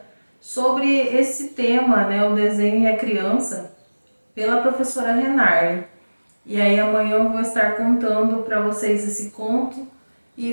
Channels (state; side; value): inverted; both; correlation -1.00